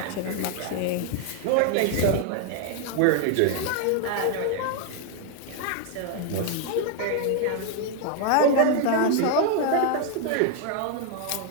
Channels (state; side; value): different; both; correlation 0.00